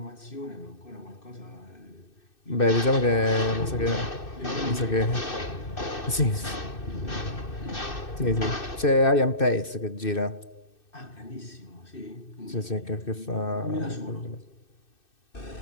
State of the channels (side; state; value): right; late; 2.6 ms